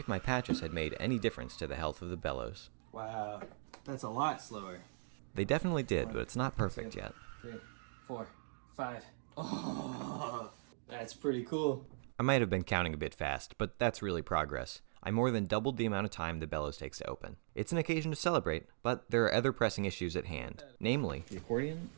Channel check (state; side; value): silent; left; digital silence